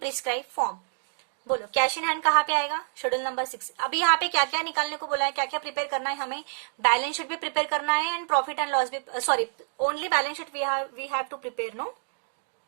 form. बोलो cash in hand कहाँ पे आएगा? Schedule number 6। अभी यहाँ पे क्या क्या निकालने को बोला है, क्या क्या प्रिपेयर करना है हमें? बैलेंस शीट भी प्रिपेयर करना है एंड प्रॉफिट एंड लॉस भी, sorry only balance sheet we have to prepare, no?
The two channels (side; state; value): left; silent; digital silence